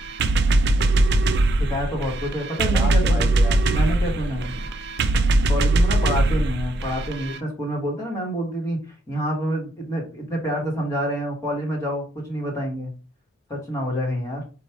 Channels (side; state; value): both; normal; correlation 0.76